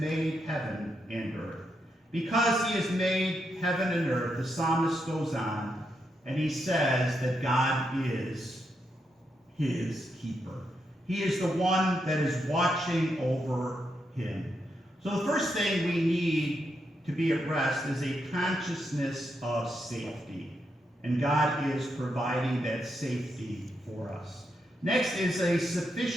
heaven and earth. Because he has made heaven and earth, the psalmist goes on, and he says that God is his keeper. He is the one that is watching over him. So the first thing we need to be at rest is a consciousness of safety. And God is providing that safety for us. Next is a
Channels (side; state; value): both; normal; correlation 0.82